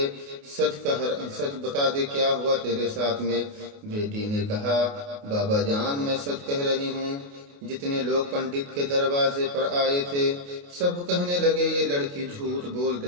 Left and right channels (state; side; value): late; left; 28 ms